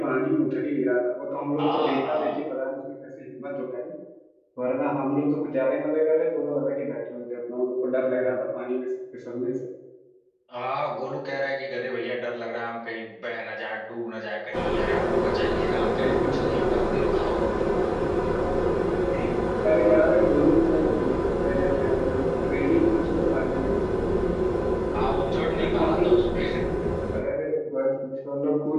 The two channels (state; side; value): identical; both; correlation 1.00